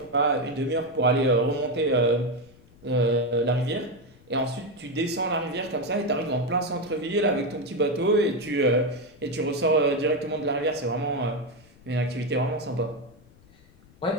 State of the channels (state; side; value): noise; left; rumble, 27 dB below the sound